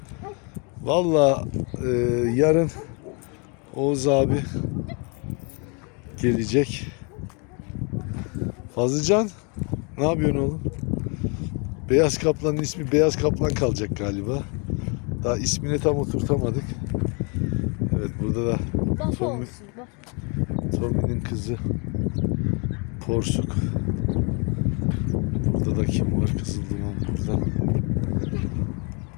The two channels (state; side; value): quieter; right; 33.7 dB